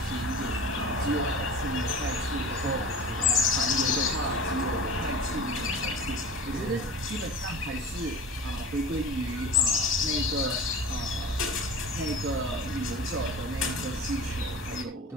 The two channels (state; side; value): normal; both; correlation 0.36